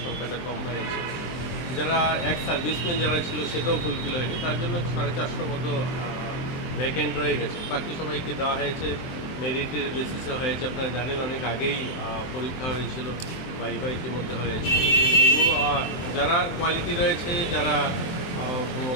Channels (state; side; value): late; right; 23 ms